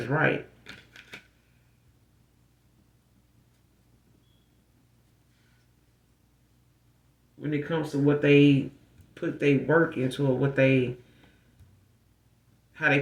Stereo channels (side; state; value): both; identical; correlation 1.00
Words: right. When it comes to what they put their work into, or what they how they